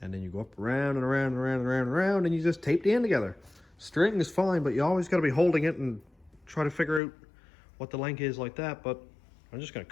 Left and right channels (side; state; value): right; drops out; at 7.0 s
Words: And then you go up around and around and around and around and around, and you just tape the end together. String is fine, but you always got to be holding it and try to figure out what the length is like that. But I'm just going